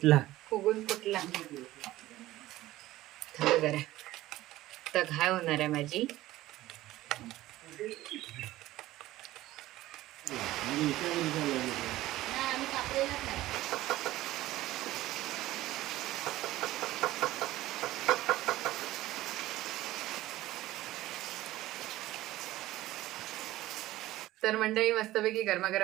फुगून फुटला. थांब जरा तर घाय होणार आहे माझी. तर मंडळी मस्तपैकी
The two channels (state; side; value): quieter; left; 16.2 dB